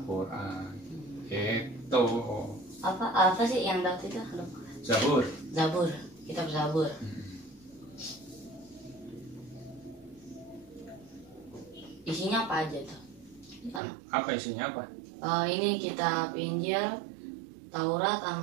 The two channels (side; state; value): left; drops out; at 13.8 s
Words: Itu. Apa sih yang Daud itu? Zabur. Kitab Zabur. Isinya apa aja tuh? Apa isinya apa? Ini kitab Injil, Taurat